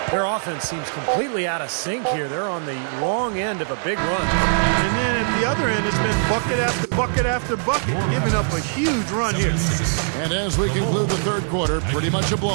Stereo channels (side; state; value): left; silent; digital silence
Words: Their offense seems completely out of sync here. They're on the wrong end of a big run. And then at the other end, it's been bucket after bucket after bucket, giving up a huge run here. And as we conclude the third quarter, pretty much a